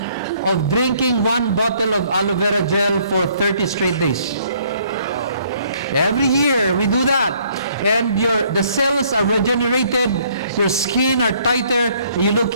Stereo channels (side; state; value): both; inverted; correlation -0.63